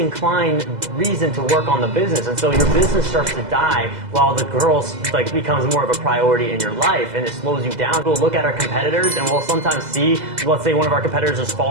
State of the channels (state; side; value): late; left; 2.0 ms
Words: reason to work on the business. And so your business starts to die while the girls like becomes more of a priority in your life, and it slows you down. We'll look at our competitors and we'll sometimes see, let's say one of our competitors is